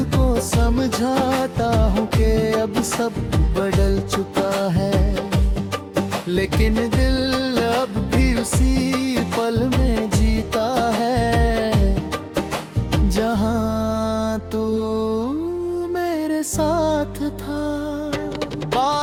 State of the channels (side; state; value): both; identical; correlation 1.00